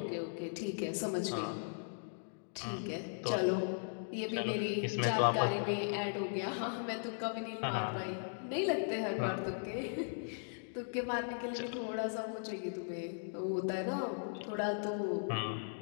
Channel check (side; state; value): right; silent; digital silence